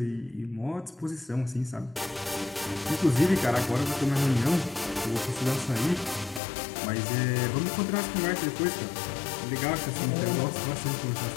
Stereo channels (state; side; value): drops out; right; at 6.4 s